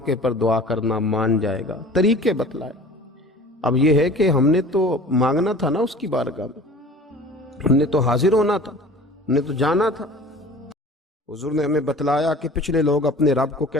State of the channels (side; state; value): both; normal; correlation 0.43